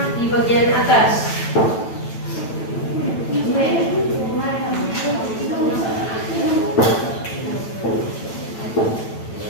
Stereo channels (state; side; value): late; right; 9.0 ms